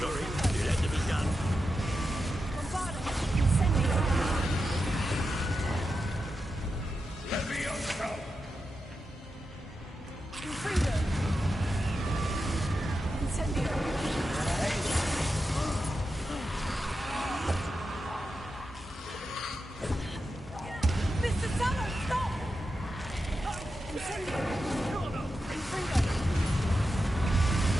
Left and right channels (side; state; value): both; normal; correlation 0.89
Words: it had to be done. Levioso! Mr. Sallow, stop! Incendio! Infringo!